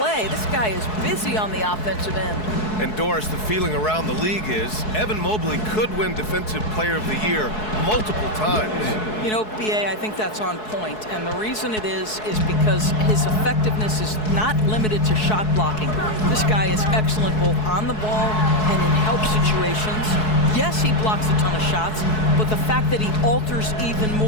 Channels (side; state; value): right; late; 4.7 ms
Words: This guy is busy on the offensive end. And Doris, the feeling around the league is Evan Mobley could win Defensive Player of the Year multiple times. You know, B.A., I think that's on point. And the reason it is because his effectiveness is not limited to shot blocking. This guy is excellent both on the ball and in help situations. Yes, he blocks a ton of shots, but the fact that he alters even